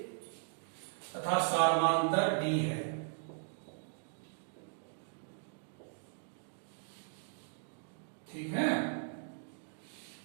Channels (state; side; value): silent; left; digital silence